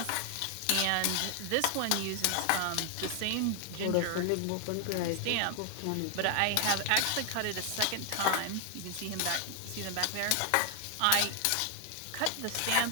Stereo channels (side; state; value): both; different; correlation 0.00